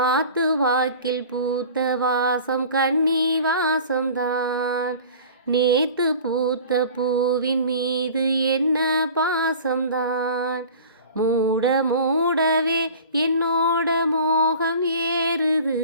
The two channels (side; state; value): both; inverted; correlation -0.42